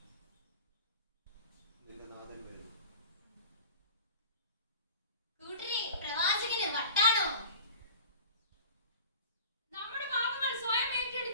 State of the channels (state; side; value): inverted; both; correlation -0.42